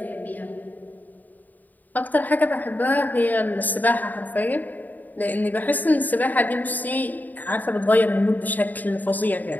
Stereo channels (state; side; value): late; right; 0.083 ms